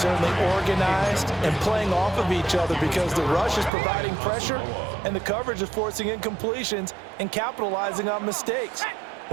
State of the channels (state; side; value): drops out; left; at 3.7 s